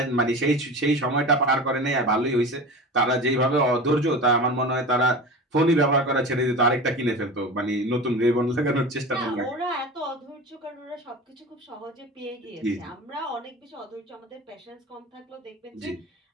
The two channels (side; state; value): both; normal; correlation 0.32